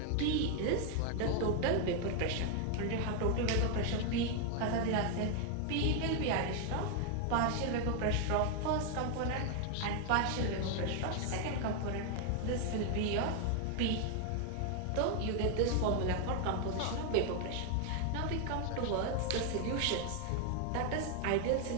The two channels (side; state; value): both; different; correlation 0.00